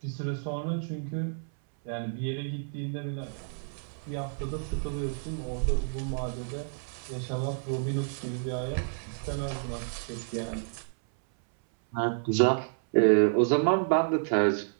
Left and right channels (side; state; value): left; silent; 58 dB below the other